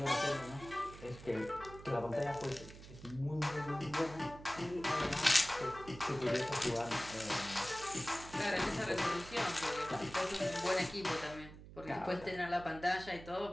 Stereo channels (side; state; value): right; noise; hum, 16 dB below the sound